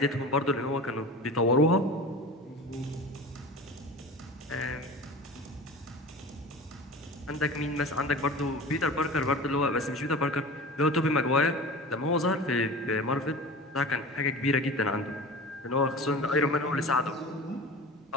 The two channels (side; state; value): both; normal; correlation 0.35